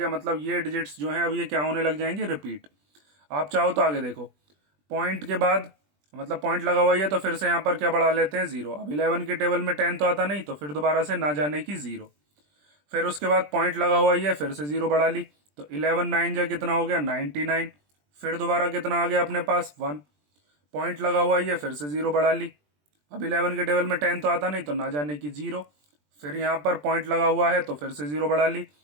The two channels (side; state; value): left; late; 20 ms